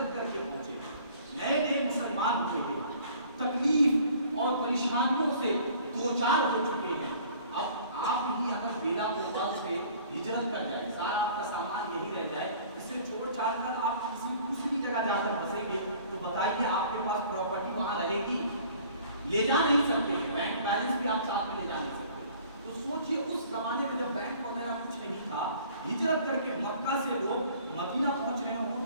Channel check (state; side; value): inverted; both; correlation -0.52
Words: کر کے پہنچے، نئے نئے مسلمان ہوئے تھے، تکلیف اور پریشانیوں سے دو چار ہو چکے ہیں۔ اب آپ ہی اگر بیلا کو سے ہجرت کر جائے، سارا آپ کا سامان یہی رہ جائے، اسے چھوڑ چھاڑ کر آپ کسی دوسری جگہ جا کر بسیں گے تو بتائیے آپ کے پاس پراپرٹی وہاں رہے گی؟ لے جا نہیں سکتے، بینک بیلنس بھی آپ ساتھ میں لے جا نہیں سکتے۔ تو سوچئے اس زمانے میں جب بینک وغیرہ کچھ نہیں تھا، ہجرت کر کے مکہ سے لوگ مدینہ پہنچ رہے ہوں تو